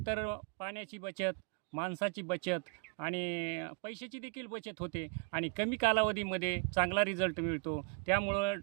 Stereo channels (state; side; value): quieter; left; 38.6 dB